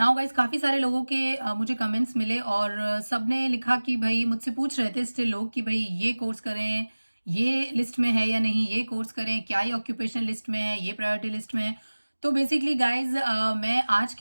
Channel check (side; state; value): both; inverted; correlation -1.00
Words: गाइस, काफी सारे लोगों के मुझे कमेंट्स मिले और सबने लिखा कि भाई मुझसे पूछ रहे थे स्टिल लोग कि भाई ये कोर्स करें, ये लिस्ट में है या नहीं, ये कोर्स करें, क्या ये ऑक्यूपेशन लिस्ट में है, ये प्रायोरिटी लिस्ट में है। तो बेसिकली गाइज मैं आज